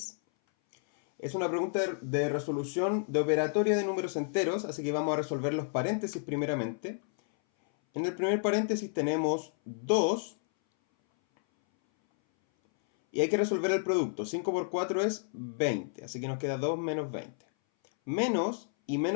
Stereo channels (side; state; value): right; silent; 57 dB below the other